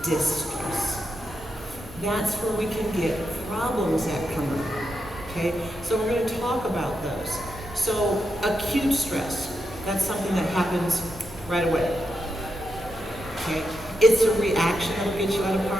distress. That's where we can get problems that come up, okay? So we're going to talk about those. So acute stress, that's something that happens right away, okay? It's a reaction that will get you out of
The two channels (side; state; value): both; normal; correlation 0.85